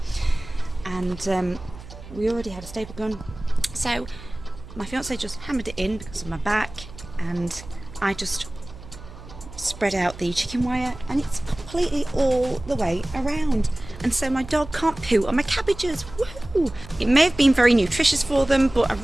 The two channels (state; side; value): noise; right; hum, 16 dB below the sound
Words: And we already had a staple gun, so my fiance just hammered it in because of my back, and I just spread out the chicken wire, and it's completely all the way around, and so my dog can't poo on my cabbages. Woo! It may have been very nutritious for them, but I